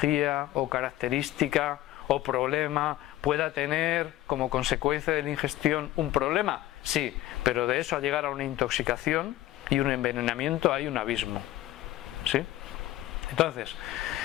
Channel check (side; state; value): right; quieter; 15.2 dB